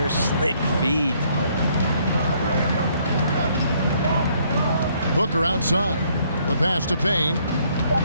Slick feed. Booker outside. The pass to Payne.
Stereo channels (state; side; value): inverted; both; correlation -0.67